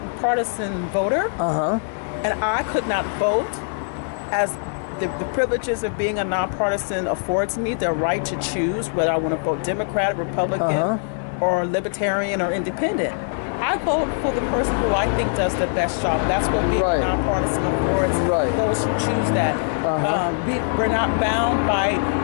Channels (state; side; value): silent; right; digital silence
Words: voter, and I could not vote, as the privileges of being a nonpartisan affords me the right to choose whether I want to vote Democrat, Republican, or Libertarian, or Independent. I vote for the person who I think does the best job. That's what being nonpartisan affords those who choose that. We're not bound by